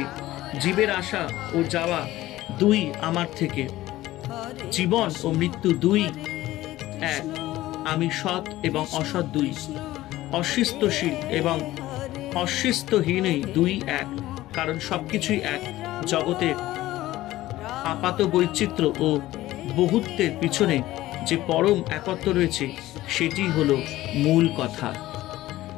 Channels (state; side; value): quieter; right; 16.1 dB